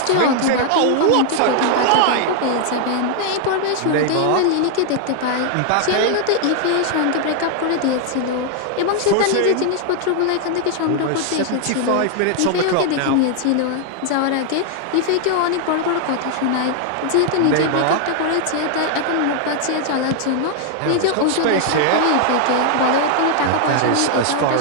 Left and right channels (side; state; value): both; different; correlation 0.00